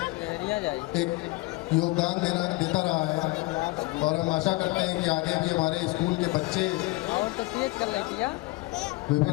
एक योगदान देता रहा है। और हम आशा करते हैं कि आगे भी हमारे स्कूल के बच्चे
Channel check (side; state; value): right; quieter; 22.6 dB